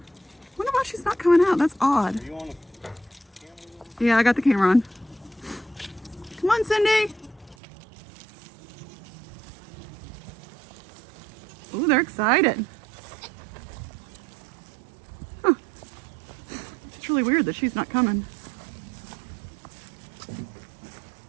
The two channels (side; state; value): left; drops out; at 7.6 s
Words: Wonder why she's not coming out. That's odd. Are you on the camera? Yeah, I got the camera on. Come on, Cindy. Ooh, they're excited. Huh. It's really weird that she's not coming.